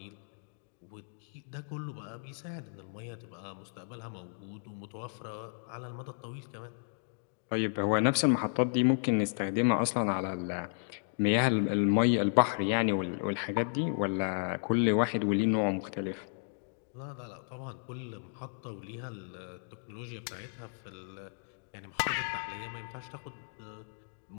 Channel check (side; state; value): right; silent; digital silence